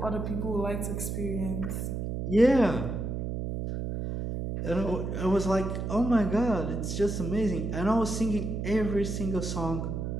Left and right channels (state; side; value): noise; right; hum, 3 dB below the sound